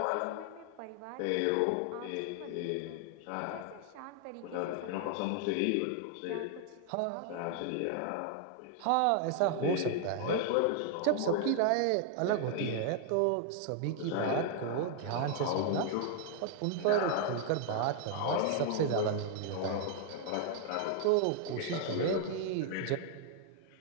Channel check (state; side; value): different; both; correlation 0.00